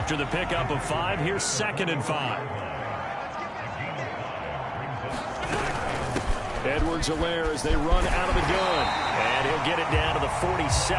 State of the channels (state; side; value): identical; both; correlation 1.00